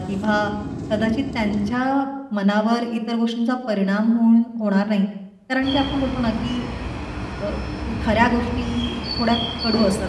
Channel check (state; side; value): identical; both; correlation 1.00